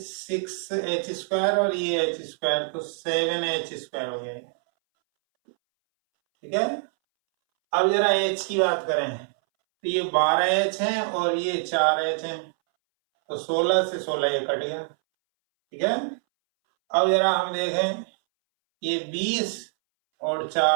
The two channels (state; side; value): silent; left; 62 dB below the other